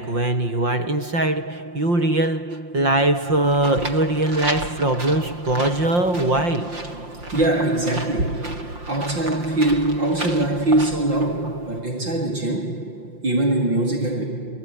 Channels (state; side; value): late; left; 5.7 ms